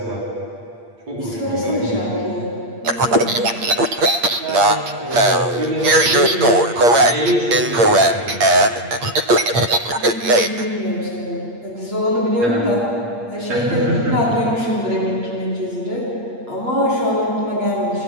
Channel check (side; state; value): left; late; 8.5 ms